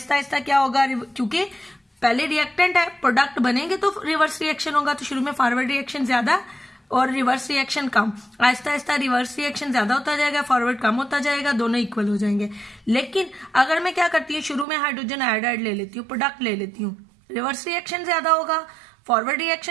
आहिस्ता क्या होगा, क्योंकि पहले रिएक्टेंट है, प्रोडक्ट बनेंगे तो रिवर्स रिएक्शन होगा, तो शुरू में फॉरवर्ड रिएक्शन ज्यादा और रिवर्स रिएक्शन कम। आहिस्ता आहिस्ता रिवर्स रिएक्शन ज्यादा होता जाएगा, फॉरवर्ड कम होता जाएगा, दोनों इक्वल हो जाएंगे। लेकिन अगर मैं क्या करती हूँ, शुरू में हाइड्रोजन आयोडाइड ले लेती हूँ, प्रोडक्ट ले लेती हूँ, रिवर्स रिएक्शन ज्यादा होगा, फॉरवर्ड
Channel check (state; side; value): drops out; left; at 14.7 s